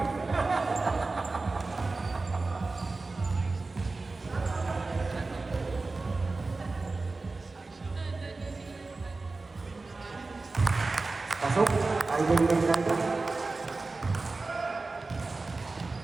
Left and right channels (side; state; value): left; quieter; 3.6 dB